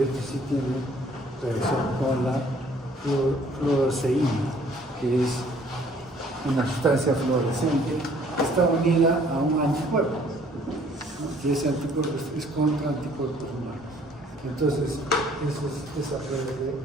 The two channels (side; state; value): both; normal; correlation 0.58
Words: este sí tiene reacción con la fluoresceína, que es una sustancia fluorescente que está unida a un anticuerpo. Y ese anticuerpo es contra anticuerpos humanos. Entonces, eso es esa prueba de...